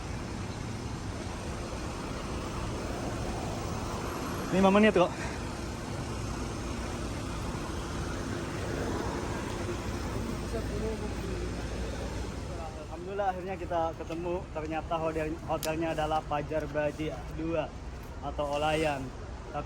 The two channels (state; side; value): identical; both; correlation 1.00